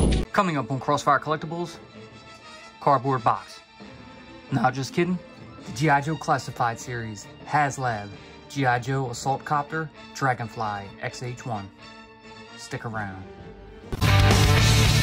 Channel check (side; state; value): both; identical; correlation 1.00